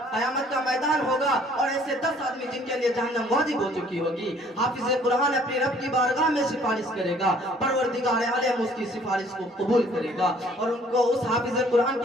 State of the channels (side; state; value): both; normal; correlation 0.58